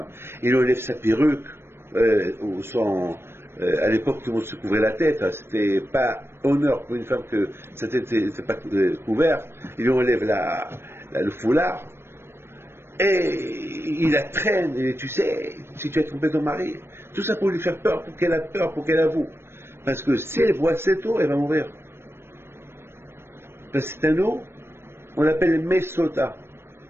Il enlève sa perruque, ou à l'époque, tout le monde se couvrait la tête. Hein, c'était pas honneur pour une femme que sa tête n'était pas couverte. Il lui enlève le foulard. Et il la traîne. Et tu sais, si tu as trompé ton mari, tout ça pour lui faire peur, pour qu'elle a peur, pour qu'elle avoue. Parce que si elle boit cette eau, elle va mourir. Parce que c'est un eau, on l'appelle mesota.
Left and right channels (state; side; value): late; left; 0.12 ms